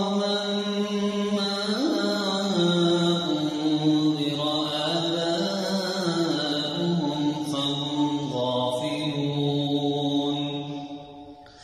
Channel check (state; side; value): identical; both; correlation 1.00